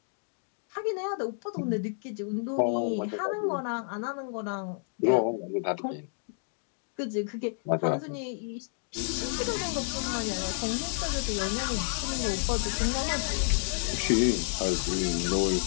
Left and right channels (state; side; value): silent; right; digital silence